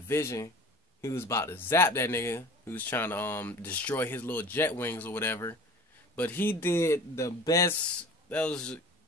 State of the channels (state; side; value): normal; both; correlation 0.42